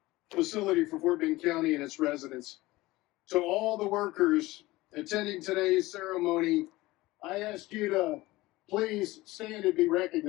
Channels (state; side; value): quieter; right; 19.3 dB